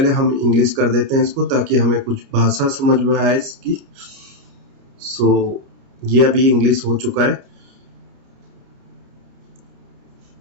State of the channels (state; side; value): late; left; 30 ms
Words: हम इंग्लिश कर देते हैं इसको ताकि हमें कुछ भाषा समझ में आए इसकी। सो ये अभी इंग्लिश हो चुका है।